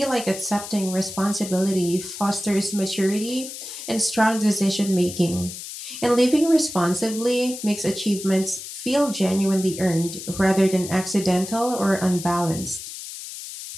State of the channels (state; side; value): noise; left; hiss, 10 dB below the sound